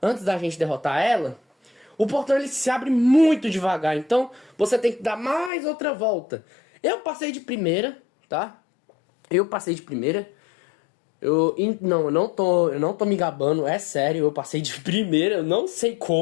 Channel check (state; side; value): drops out; right; at 5.5 s